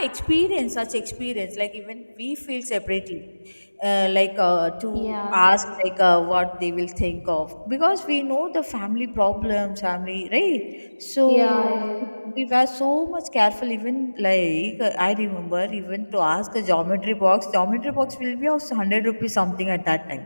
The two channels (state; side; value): inverted; both; correlation -1.00